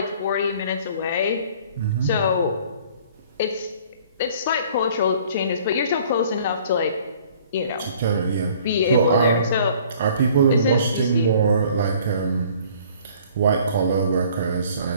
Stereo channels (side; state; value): both; inverted; correlation -0.54